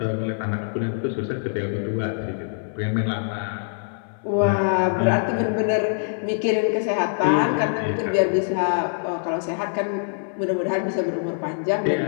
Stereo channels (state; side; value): silent; right; 58 dB below the other